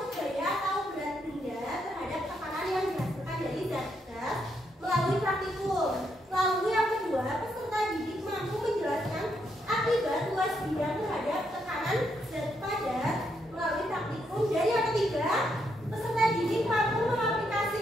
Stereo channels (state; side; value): normal; both; correlation 0.78